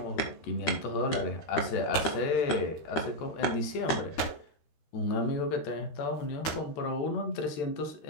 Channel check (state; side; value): late; right; 13 ms